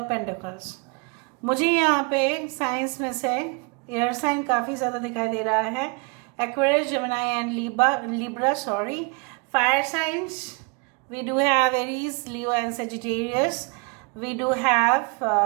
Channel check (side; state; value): left; quieter; 32.8 dB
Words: pentacles. मुझे यहाँ पे साइंस में से एयर साइन काफ़ी ज़्यादा दिखाई दे रहा है. Aquarius, Gemini and Libra. Sorry, fire signs. We do have Aries, Leo and Sagittarius. We do have